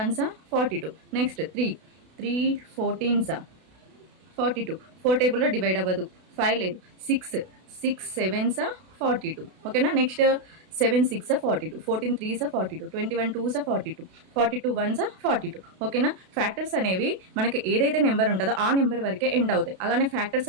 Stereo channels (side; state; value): left; late; 32 ms